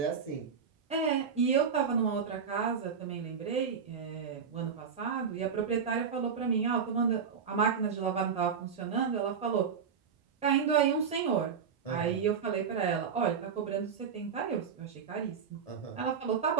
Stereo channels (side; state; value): left; quieter; 6.6 dB